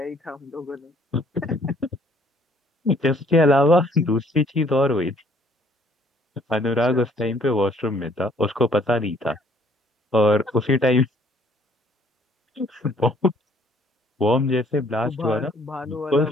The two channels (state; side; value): normal; both; correlation 0.61